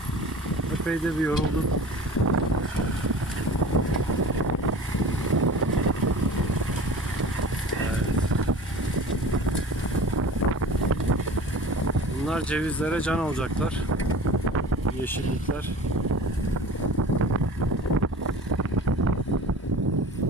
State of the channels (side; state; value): both; normal; correlation 0.39